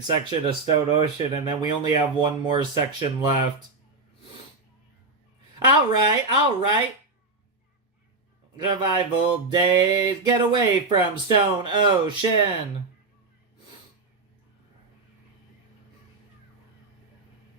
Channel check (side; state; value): left; quieter; 3.5 dB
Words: section of Stone Ocean, and then we only have one more section left. Alright, alright. Survival days, get away from Stone Ocean.